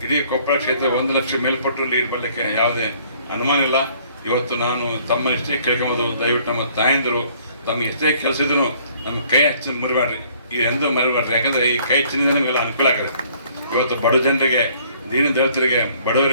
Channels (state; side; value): inverted; both; correlation -0.59